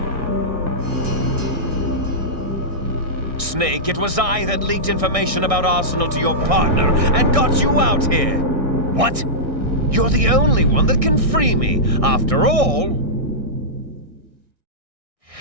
Snake, it was I that leaked information about Arsenal to your partner and got you out here. What? You're the only one that can free me. After all,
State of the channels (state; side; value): late; left; 1.6 ms